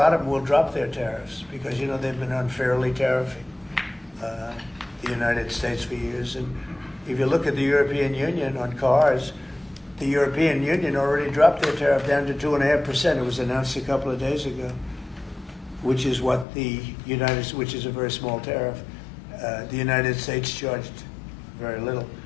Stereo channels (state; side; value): drops out; right; at 16.4 s